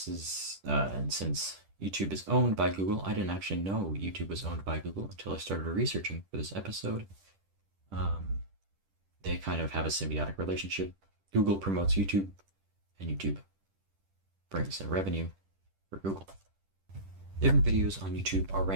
is, and since YouTube is owned by Google, I didn't actually know YouTube was owned by Google until I started researching for this episode. They kind of have a symbiotic relationship. Google promotes YouTube, and YouTube brings in revenue for Google. Different videos on YouTube are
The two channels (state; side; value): late; left; 10 ms